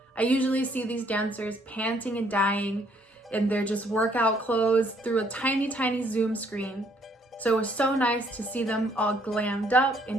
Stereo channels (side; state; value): both; normal; correlation 0.66